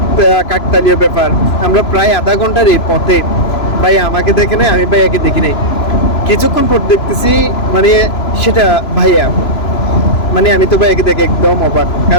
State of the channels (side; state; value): right; late; 3.0 ms